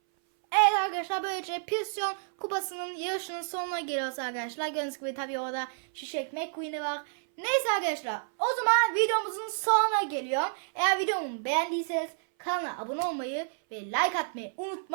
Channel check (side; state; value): left; silent; 58 dB below the other